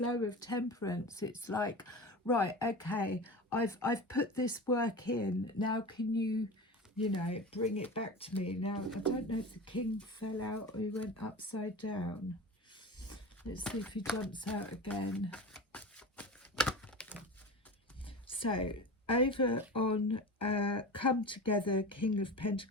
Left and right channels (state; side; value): normal; both; correlation 0.30